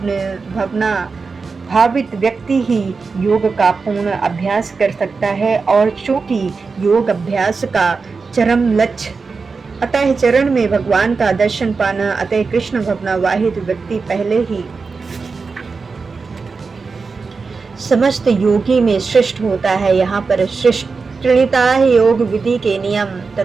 भावित व्यक्ति ही योग का पूर्ण अभ्यास कर सकता है, और चूंकि योग अभ्यास का चरम लक्ष्य अतः चरण में भगवान का दर्शन पाना, अतः कृष्ण भावनावाहित व्यक्ति पहले ही समस्त योगी में श्रेष्ठ होता है। यहाँ पर श्रेष्ठता योग विधि के नियम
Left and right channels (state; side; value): quieter; left; 4.6 dB